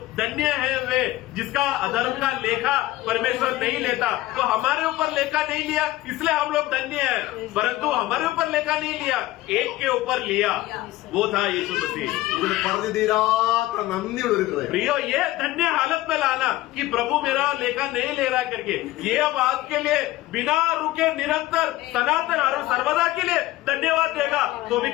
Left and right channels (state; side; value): quieter; right; 16.9 dB